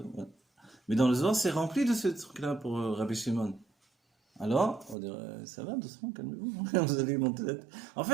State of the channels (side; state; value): left; drops out; at 5.0 s